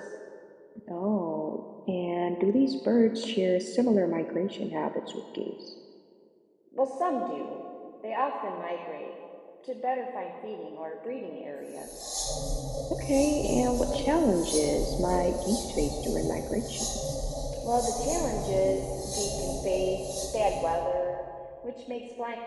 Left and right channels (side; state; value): both; identical; correlation 1.00